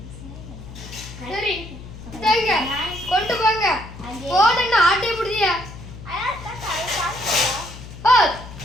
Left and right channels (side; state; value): left; noise; hum, 14 dB below the sound